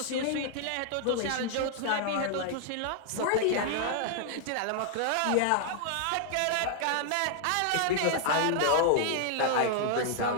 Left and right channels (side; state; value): both; different; correlation 0.00